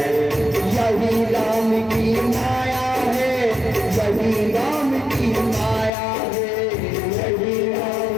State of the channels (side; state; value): right; drops out; at 5.9 s